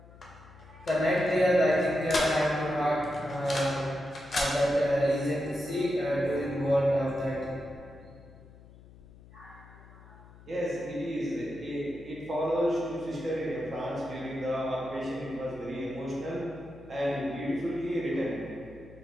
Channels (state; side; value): noise; left; hum, 21 dB below the sound